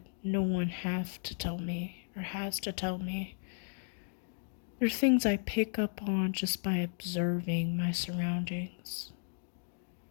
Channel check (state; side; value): silent; right; digital silence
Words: no one have to tell me or has to tell me. They're things I pick up on just by observing my surroundings.